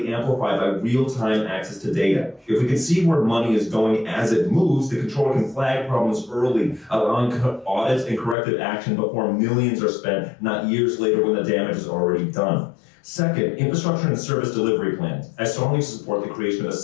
amplified by real-time access to data. If we can see where money is going as it moves, the controller can flag problems early, allowing audits and corrective action before millions are spent, not years later when the damage is already done. Second, infrastructure and service delivery plans. I strongly support the creation of a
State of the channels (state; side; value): drops out; right; at 8.3 s